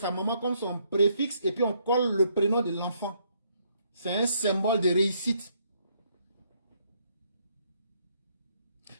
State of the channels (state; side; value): inverted; both; correlation -0.71